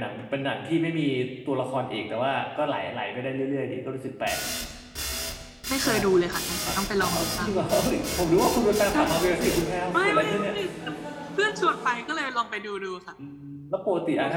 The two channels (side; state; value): both; identical; correlation 1.00